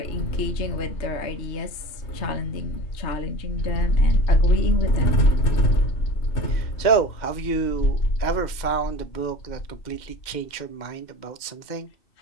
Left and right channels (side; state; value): right; late; 2.1 ms